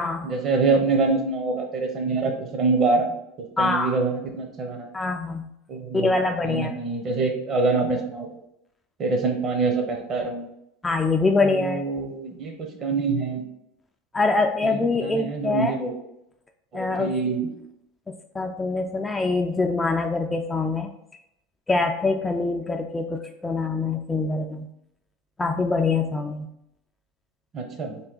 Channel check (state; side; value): normal; both; correlation 0.45